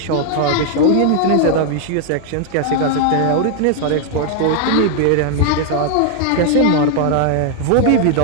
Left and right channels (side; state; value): both; different; correlation 0.00